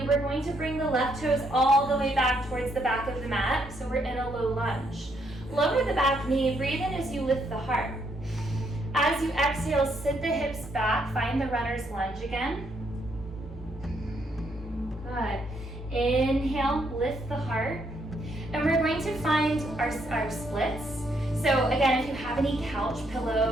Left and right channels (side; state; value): both; normal; correlation 0.73